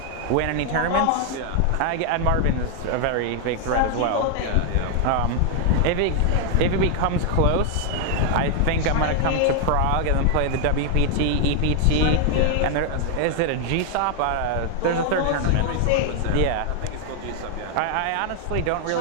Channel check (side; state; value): both; different; correlation 0.00